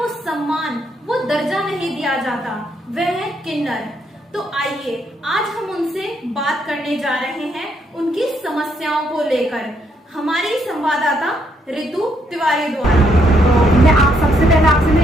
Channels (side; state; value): both; normal; correlation 0.73